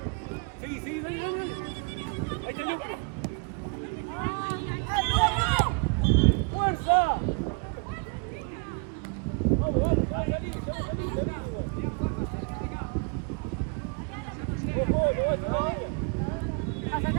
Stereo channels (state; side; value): quieter; left; 35.7 dB